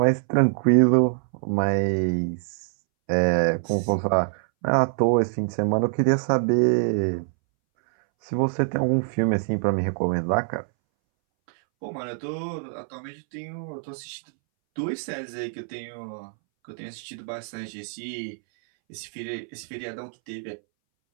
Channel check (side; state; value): left; silent; 62 dB below the other